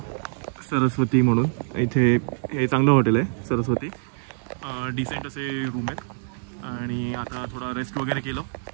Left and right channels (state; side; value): silent; left; digital silence